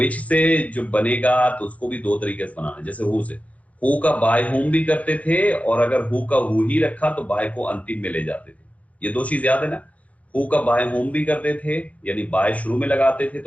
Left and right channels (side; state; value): right; late; 0.067 ms